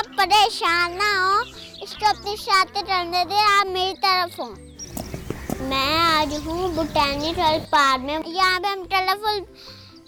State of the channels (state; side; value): identical; both; correlation 1.00